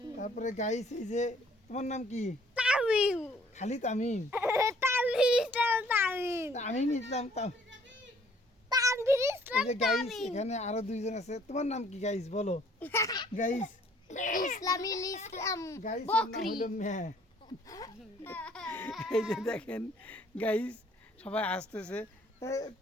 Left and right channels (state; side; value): normal; both; correlation 0.60